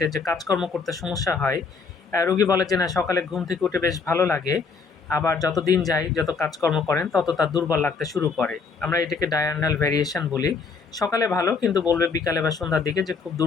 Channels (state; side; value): quieter; right; 4.9 dB